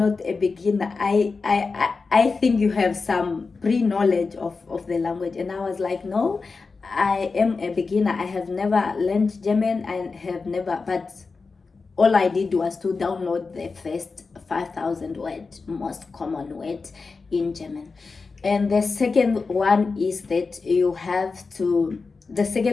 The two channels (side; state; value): right; quieter; 4.4 dB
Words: a beginner. I think you have some pre-knowledge of the language. And I was like, no, I am a beginner. I have never learned German. But all I did was to download the first 5,000 words, most common words in German. And the second one is that the